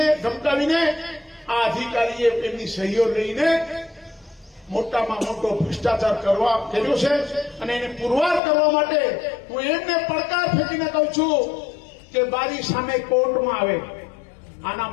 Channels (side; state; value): right; drops out; at 8.4 s